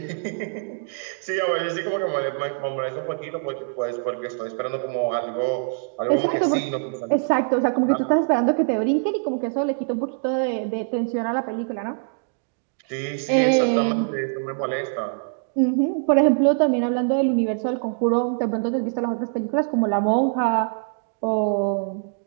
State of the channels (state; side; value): silent; left; digital silence